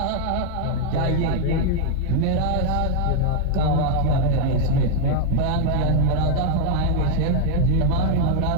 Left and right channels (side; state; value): both; different; correlation 0.00